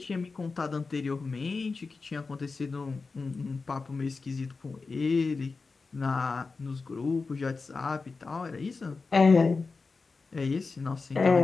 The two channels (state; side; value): quieter; right; 4.2 dB